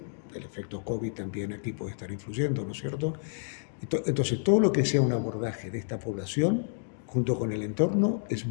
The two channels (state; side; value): silent; right; digital silence